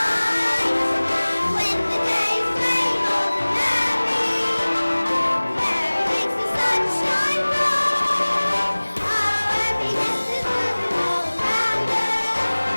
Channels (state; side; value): inverted; both; correlation -1.00